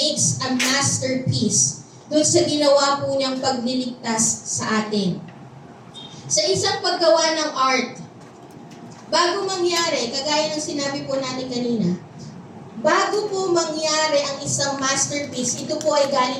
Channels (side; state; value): both; identical; correlation 1.00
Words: a masterpiece doon sa ginawa po niyang pagliligtas sa atin. Sa isang paggawa ng art, bago mangyari, kagaya ng sinabi po natin kanina, bago po mangyari ang isang masterpiece, ito po ay